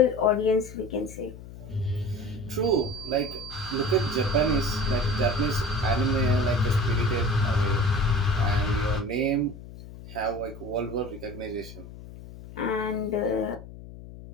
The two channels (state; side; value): noise; left; hum, 15 dB below the sound